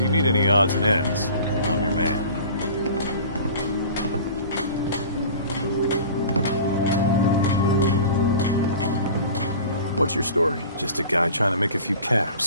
need any odds and ends, I'm your man. What's your story? Just a guy trying to make a few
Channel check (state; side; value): inverted; both; correlation -0.41